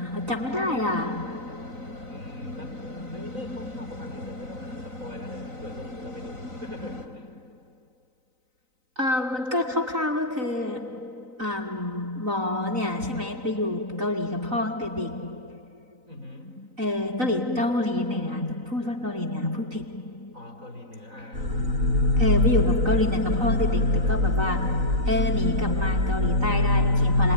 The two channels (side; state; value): left; late; 3.9 ms